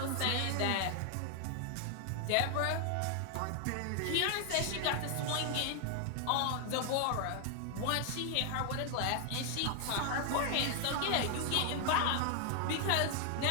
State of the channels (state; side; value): different; both; correlation 0.00